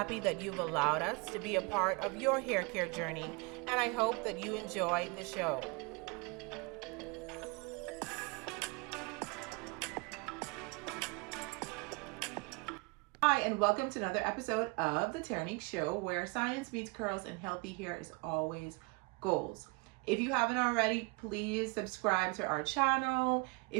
that you've allowed us to be a part of your hair care journey, and I hope that you enjoy the show. Hi, and welcome to another episode of the Terrinique Show, where science meets curls and healthy hair is always goals. If you haven't already, please subscribe to our channel.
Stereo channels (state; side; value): quieter; left; 28.4 dB